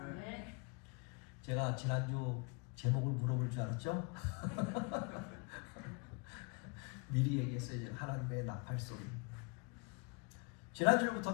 제가 지난주 제목을 물어볼 줄 알았죠? 미리 얘기했어요. 이제 하나님의 나팔 소리. 지난주부터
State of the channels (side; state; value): right; quieter; 32.8 dB